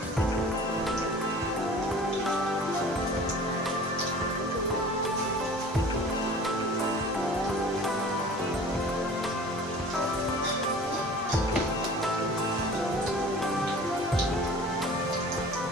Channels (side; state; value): both; normal; correlation 0.44